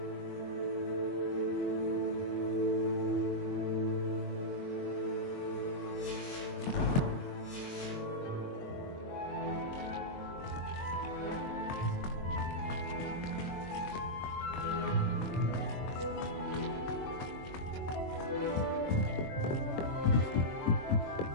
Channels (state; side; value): late; right; 22 ms